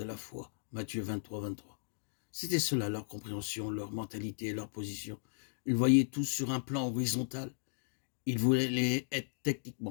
et la foi. Matthieu 23, 23. C'était cela leur compréhension, leur mentalité et leur position. Ils voyaient tout sur un plan horizontal. Ils voulaient être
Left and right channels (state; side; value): silent; right; digital silence